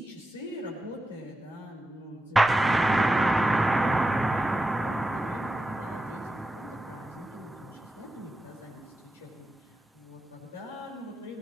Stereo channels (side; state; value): both; normal; correlation 0.90